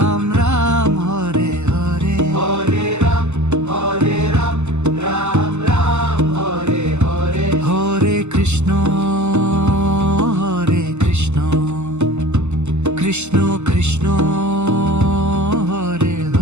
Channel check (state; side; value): late; left; 0.83 ms